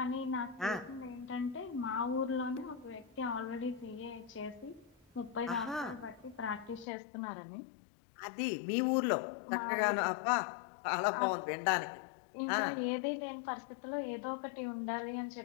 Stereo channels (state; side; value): drops out; right; at 6.9 s